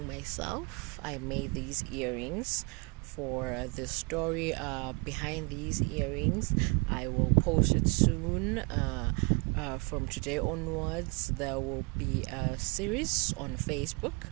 myself. I made these earrings for the story behind these earrings. I will post it soon. From today onwards, there will be a series on Facebook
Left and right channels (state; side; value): quieter; left; 31.1 dB